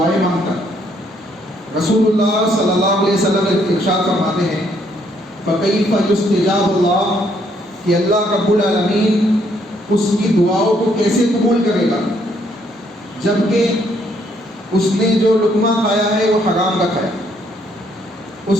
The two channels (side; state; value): both; normal; correlation 0.69